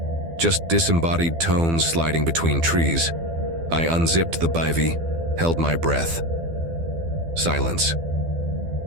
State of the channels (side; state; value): left; late; 12 ms